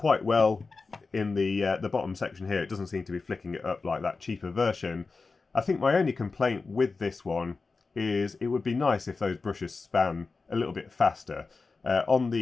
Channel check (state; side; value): quieter; right; 4.2 dB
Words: well in the bottom section here. It doesn't seem to be flicking it up like that cheaper version. I think my only complaint with this one is it would be nice if those brushes span a little bit faster. On the